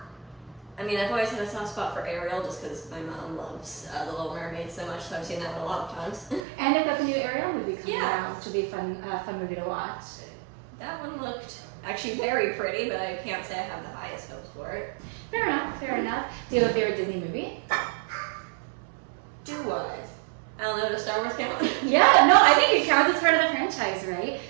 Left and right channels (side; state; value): left; drops out; at 6.5 s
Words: I mean, I've always had a soft spot for Ariel just because my mom loves The Little Mermaid so much, so I've seen that one a lot of times. And they've got the new Ariel movie coming out, which will be a fun movie to watch. That one looked actually very pretty, but I can't say I have the highest hopes for it. Fair enough, fair enough. Do you have a favorite Disney movie? Do I? I don't know, does Star Wars count? Yeah, no, I think it counts as part of the franchise, right?